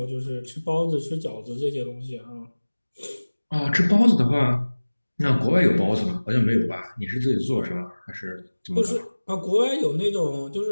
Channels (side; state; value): both; inverted; correlation -1.00